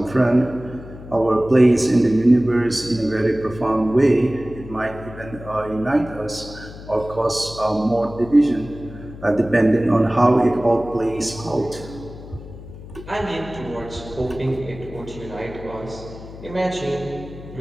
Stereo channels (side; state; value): left; noise; hum, 15 dB below the sound